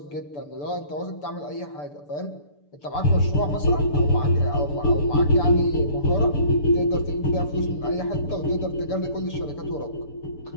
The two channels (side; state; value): right; late; 6.9 ms